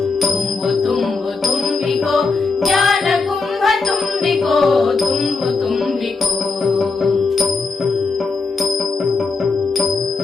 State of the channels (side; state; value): right; quieter; 4.2 dB